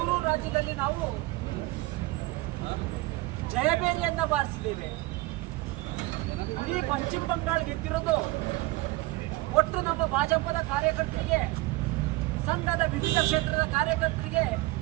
ರಾಜ್ಯದಲ್ಲಿ ನಾವು ಜಯಬೇರಿಯನ್ನ ಬಾರಿಸಿದ್ದೇವೆ. ಇಡೀ ಪಶ್ಚಿಮ ಬಂಗಾಳ ಗೆದ್ದಿರೋದು ಒಟ್ಟು ನಮ್ಮ ಭಾಜಪದ ಕಾರ್ಯಕರ್ತರಿಗೆ, ಸಂಘದ ವಿವಿಧ ಕ್ಷೇತ್ರದ ಕಾರ್ಯಕರ್ತರಿಗೆ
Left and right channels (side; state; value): left; quieter; 20.5 dB